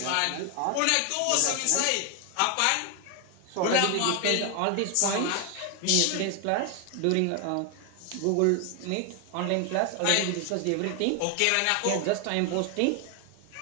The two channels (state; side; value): different; both; correlation 0.00